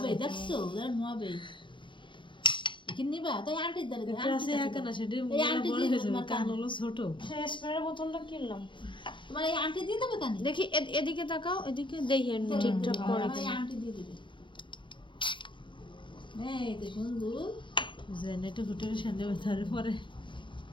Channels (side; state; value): right; late; 0.24 ms